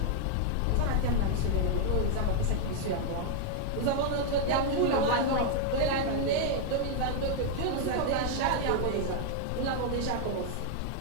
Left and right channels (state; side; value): different; both; correlation 0.00